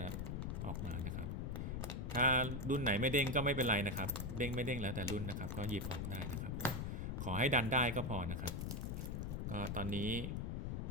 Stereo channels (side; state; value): left; noise; rumble, 2 dB below the sound